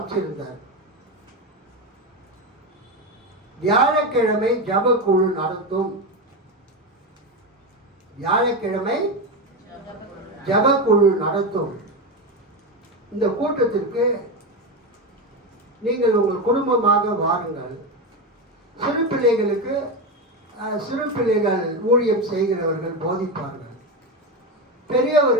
வியாழக்கிழமை ஜபக்குழு நடத்தும். வியாழக்கிழமை ஜபக்குழு நடத்தும். இந்த கூட்டத்திற்கு நீங்கள் உங்கள் குடும்பமாக வாருங்கள். சிறு பிள்ளைகளுக்கு சிறு பிள்ளைகள் ஊழியம் செய்கிறவர்கள் போதிப்பார்கள்.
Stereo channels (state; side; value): normal; both; correlation 0.15